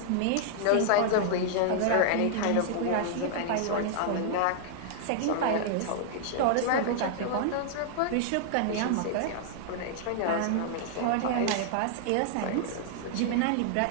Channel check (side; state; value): both; different; correlation -0.01